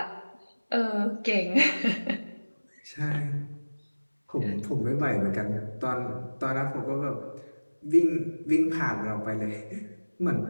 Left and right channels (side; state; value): both; inverted; correlation -1.00